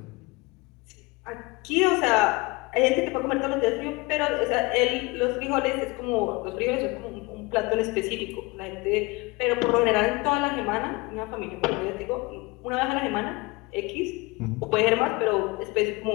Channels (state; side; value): quieter; right; 24.6 dB